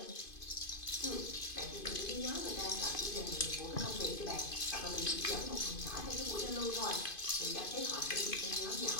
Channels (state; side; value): late; right; 2.5 ms